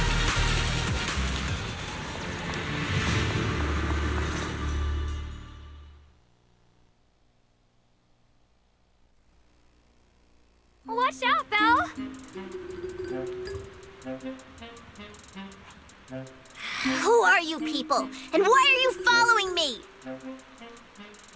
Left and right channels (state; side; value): identical; both; correlation 1.00